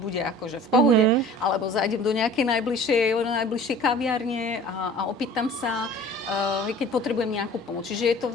akože v pohode, alebo zajdem do nejakej najbližšej kaviarne a opýtam sa, keď potrebujem nejakú pomoc. Čiže je to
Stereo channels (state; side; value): normal; both; correlation 0.45